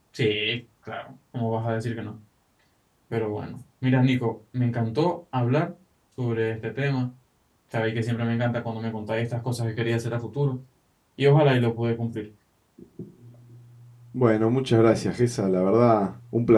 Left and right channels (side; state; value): both; identical; correlation 1.00